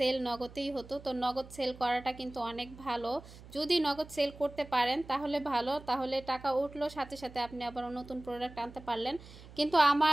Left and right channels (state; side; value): noise; right; hum, 18 dB below the sound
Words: নগদেই হতো। তো নগদ সেল করাটা কিন্তু অনেক ভালো, যদি নগদ সেল করতে পারেন তাহলে ভালো, তাহলে টাকা উঠলো সাথে সাথে আপনি আবার নতুন প্রোডাক্ট আনতে পারলেন। কিন্তু